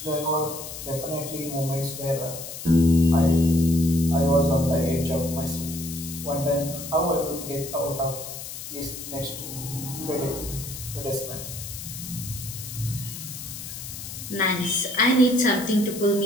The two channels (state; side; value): noise; left; hiss, 10 dB below the sound